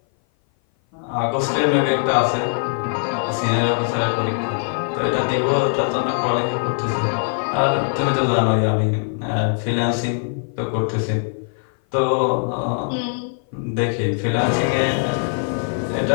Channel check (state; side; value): silent; right; 57 dB below the other